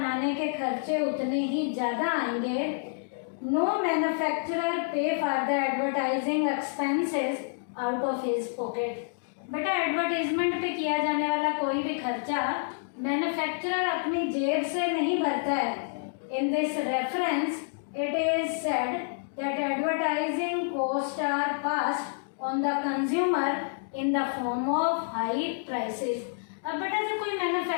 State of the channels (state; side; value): silent; right; digital silence